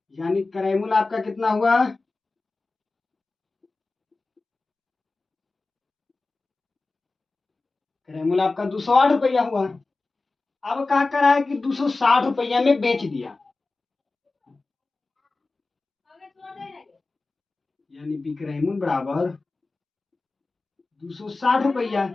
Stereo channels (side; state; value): right; quieter; 3.5 dB